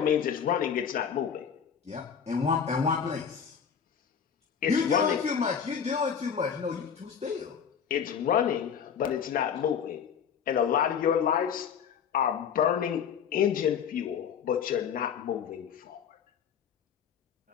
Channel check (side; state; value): right; quieter; 7.5 dB